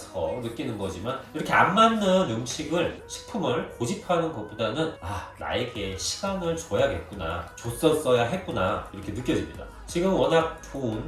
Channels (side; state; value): both; identical; correlation 1.00